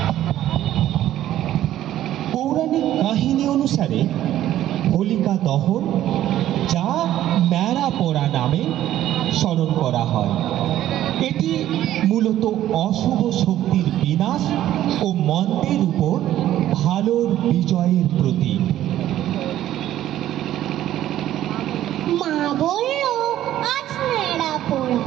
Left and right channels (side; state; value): left; quieter; 12.8 dB